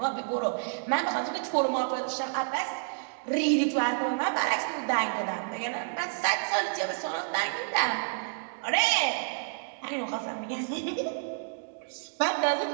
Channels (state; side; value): silent; left; digital silence